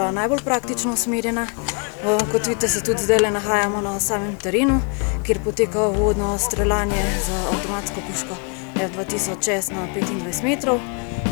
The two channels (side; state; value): right; quieter; 38.3 dB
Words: najbolj praktično usmerjena. Kot vidite, se tudi zdaj nahajamo na samem terenu, kjer poteka uvodno streljanje z avtomatsko puško F2000S na 25 metrov.